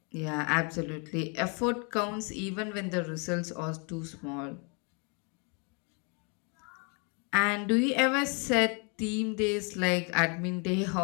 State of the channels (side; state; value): right; quieter; 35.5 dB